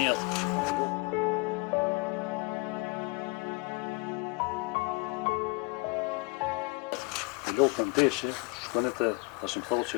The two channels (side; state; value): right; quieter; 29.2 dB